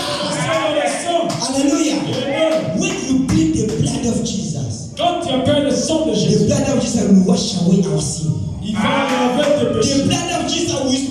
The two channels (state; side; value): identical; both; correlation 1.00